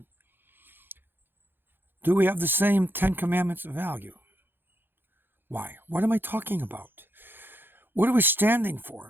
Do we have the same 10 Commandments value? Why? What am I talking about? What are we standing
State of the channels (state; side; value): late; left; 0.10 ms